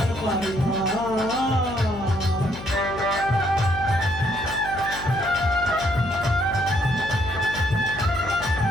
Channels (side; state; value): left; noise; hum, 13 dB below the sound